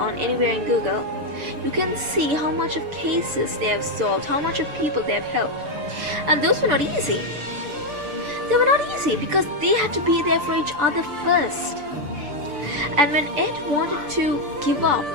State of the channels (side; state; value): left; late; 6.8 ms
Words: anywhere in Google, you can see how much of cases they have solved, how much of people they have helped. And those were not easy. They were not easy because they had to be there for each other first. And when Ed wanted to give up,